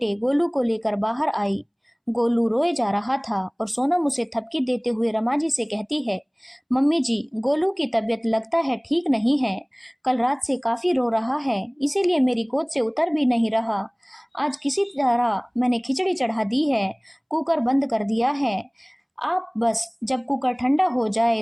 गोलू को लेकर बाहर आई। गोलू रोए जा रहा था और सोनम उसे थपकी देते हुए रमा जी से कहती है, मम्मी जी, गोलू की तबीयत लगता है ठीक नहीं है। कल रात से काफी रो रहा है, इसीलिए मेरी गोद से उतर भी नहीं रहा। आज किसी तरह मैंने खिचड़ी चढ़ा दी है, कुकर बंद कर दिया है। आप बस जब कुकर ठंडा हो जाए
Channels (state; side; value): identical; both; correlation 1.00